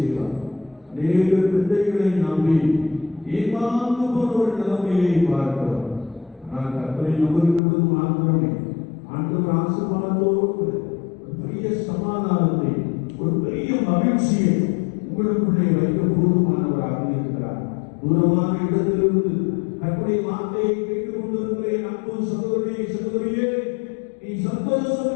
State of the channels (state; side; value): drops out; right; at 7.6 s